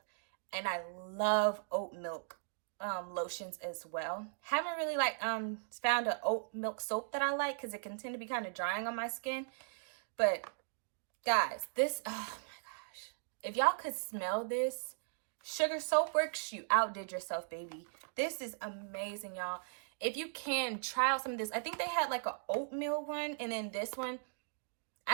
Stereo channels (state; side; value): silent; left; digital silence